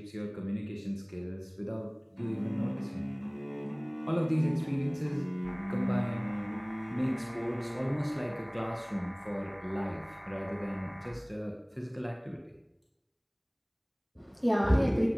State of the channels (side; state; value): both; identical; correlation 1.00